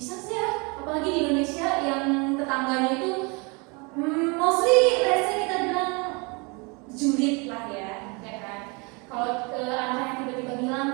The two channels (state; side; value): quieter; left; 30.0 dB